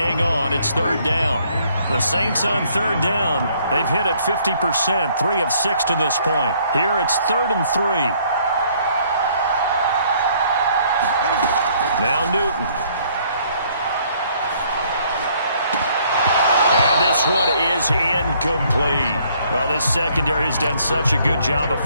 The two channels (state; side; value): inverted; both; correlation -0.64